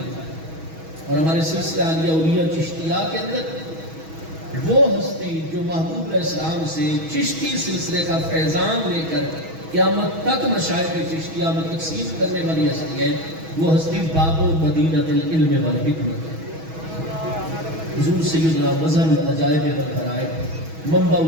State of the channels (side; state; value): left; late; 6.2 ms